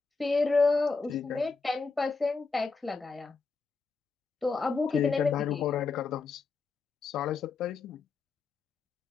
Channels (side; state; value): right; quieter; 4.4 dB